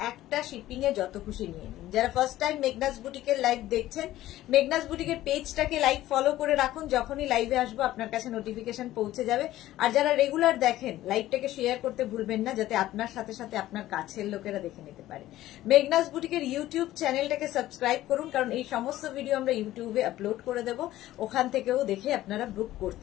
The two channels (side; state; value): right; quieter; 14.8 dB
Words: একটা শিপিং এ যত খুশি নিয়ে নিন। যারা ফার্স্ট টাইম মেঘনাস বুটিকের লাইভ দেখছেন, মেঘনাস বুটিকের পেজটাকে লাইক ফলো করে রাখুন। যখনই লাইভে আসবো আপনার কাছে নোটিফিকেশন পৌঁছে যাবে। আর যারা রেগুলার দেখেন, লাইভটাকে শেয়ার করতে ভুলবেন না, যাতে আপনার সাথে সাথে আপনার কাছের লোকেরা দেখে নিতে পারে। মেঘনাস বুটিকের ইউটিউব চ্যানেলটাকে সাবস্ক্রাইব করুন, কারণ এই সমস্ত ভিডিও আমরা ইউটিউবে আপলোড করে দেব, ওখান থেকেও দেখে আপনারা বুক